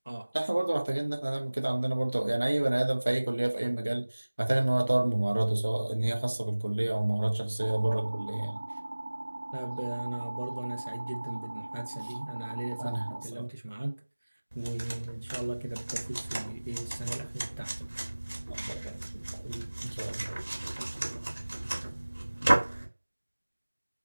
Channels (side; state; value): both; inverted; correlation -1.00